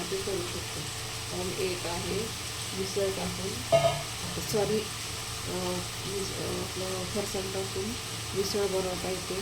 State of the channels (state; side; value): identical; both; correlation 1.00